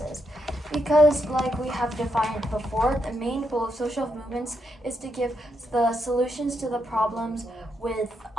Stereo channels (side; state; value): both; normal; correlation 0.80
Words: Because, like we have defined before, the main goal of social movements is to give the solutions to the problems with